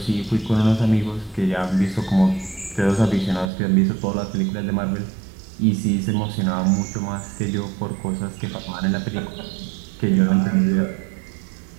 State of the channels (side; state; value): left; drops out; at 3.5 s